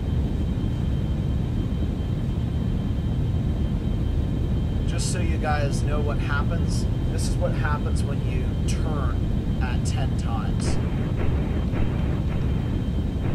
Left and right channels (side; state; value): both; identical; correlation 1.00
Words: Just so you guys know what happens, this is what happens when you turn at 10 times.